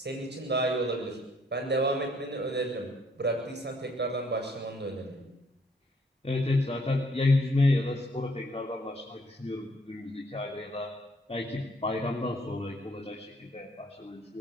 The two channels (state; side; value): normal; both; correlation 0.65